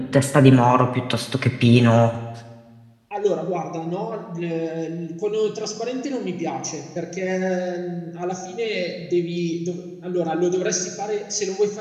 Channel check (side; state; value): both; identical; correlation 1.00